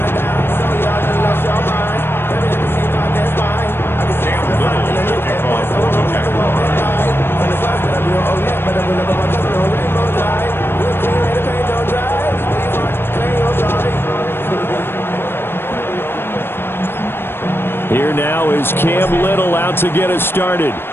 Here now is Cam Little out to get us started.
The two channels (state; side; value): late; right; 0.11 ms